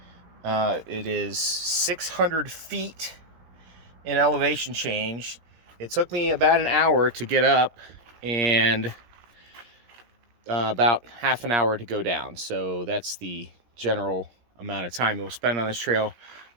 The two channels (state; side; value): late; left; 17 ms